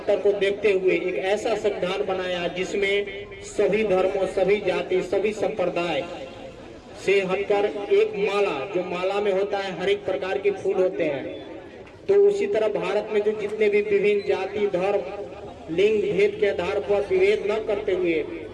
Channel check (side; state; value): both; identical; correlation 1.00